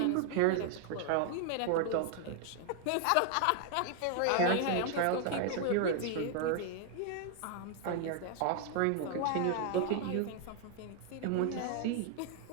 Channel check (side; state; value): both; different; correlation 0.00